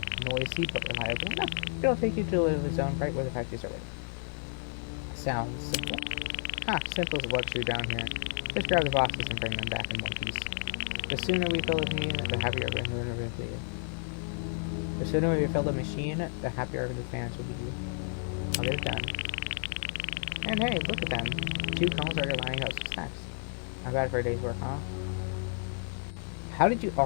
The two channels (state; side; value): silent; right; 57 dB below the other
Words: reliable enough. It'll take you to the delivery zone right where the packages are waiting. Sounds simple. Simple is a luxury down here. Just grab the boxes and bring them back in one piece. The sooner we fill the machine, the happier our fans will be. The sooner we fill the machine, the happier our fans will be. I'll get it done. And hey, look at them. 2 cones are lining up some snacks. Not bad for a day's work, huh? How did you